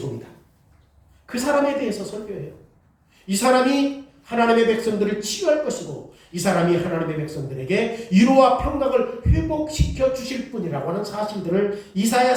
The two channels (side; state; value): both; identical; correlation 1.00